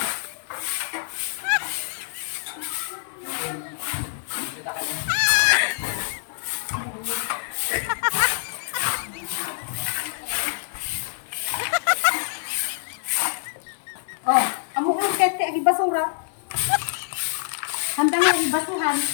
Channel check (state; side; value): silent; right; digital silence